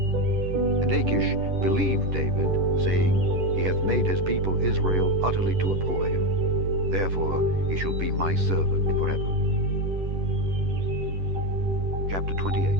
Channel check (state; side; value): late; left; 10 ms